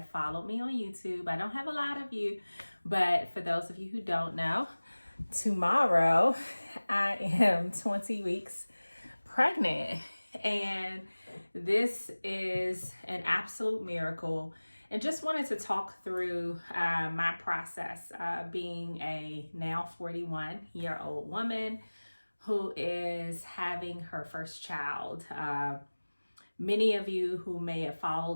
followed me on YouTube, I don't have a lot of you, but for those of you who don't know, tomorrow I am 20 weeks pregnant, and this is an absolute miracle. And just wanted to talk through my process being a now 41-year-old woman who is having her first child. Many of you who may have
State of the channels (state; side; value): inverted; both; correlation -1.00